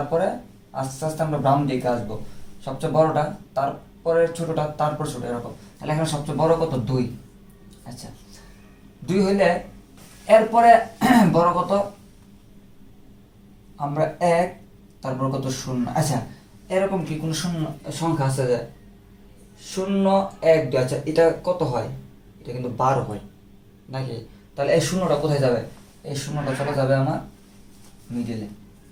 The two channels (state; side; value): identical; both; correlation 1.00